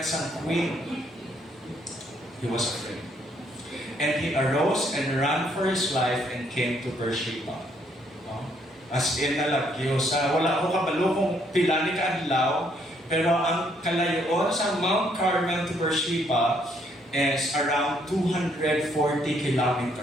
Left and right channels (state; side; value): normal; both; correlation 0.70